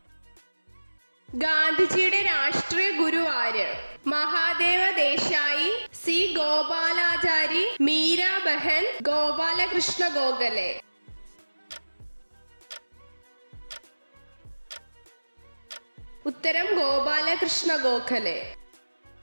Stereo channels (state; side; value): inverted; both; correlation -1.00